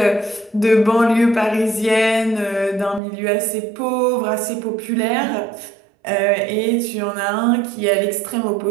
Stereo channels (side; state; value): left; drops out; at 3.0 s